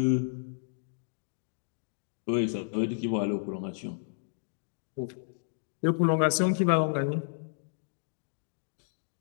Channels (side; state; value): right; silent; digital silence